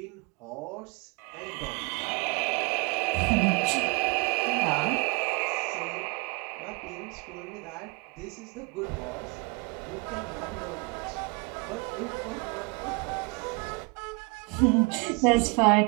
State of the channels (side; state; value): left; quieter; 29.7 dB